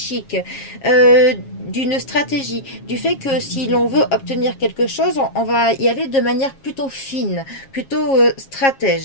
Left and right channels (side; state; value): right; late; 7.3 ms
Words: d'une stratégie, du fait que si l'on veut obtenir quelque chose, on va y aller de manière plutôt fine, plutôt